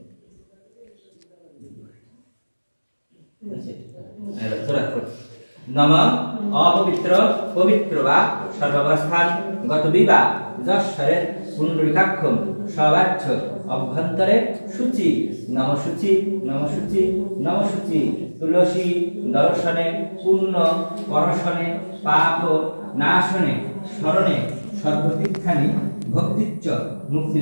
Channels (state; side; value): inverted; both; correlation -1.00